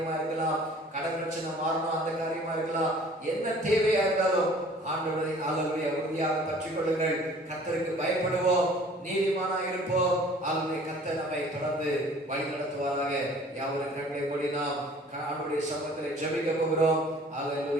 இருக்கலாம், கடன் பிரச்சனை மாறணும் அந்த காரியமா இருக்கலாம், என்ன தேவையா இருந்தாலும் ஆண்டவரை அல்லது உறுதியாக பற்றிக் கொள்ளுங்கள். கர்த்தருக்கு பயப்படுவோம், நீதிமானா இருப்போம். அல்லது கர்த்தர் நம்மை தொடர்ந்து வழி நடத்துவாராக. யாவரும் கண்களை மூடி நாம் ஆண்டவருடைய சமூகத்தில் ஜெபிக்க போகிறோம்.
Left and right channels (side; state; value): both; normal; correlation 0.51